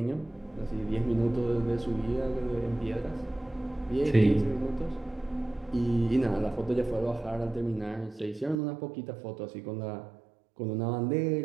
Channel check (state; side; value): drops out; left; at 8.6 s